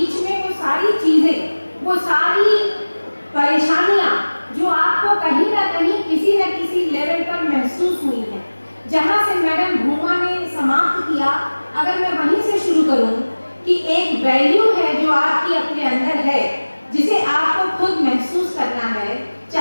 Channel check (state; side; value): inverted; both; correlation -1.00